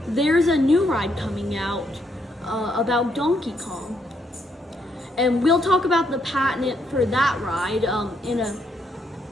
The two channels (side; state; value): both; normal; correlation 0.75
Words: There's a new ride coming out about Donkey Kong, and we'll talk about the patent for that ride